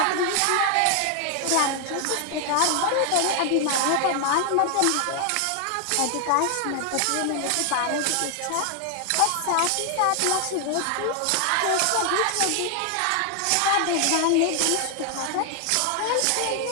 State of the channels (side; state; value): both; different; correlation 0.00